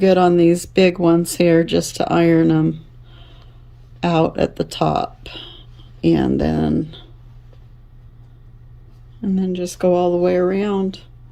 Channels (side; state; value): both; identical; correlation 1.00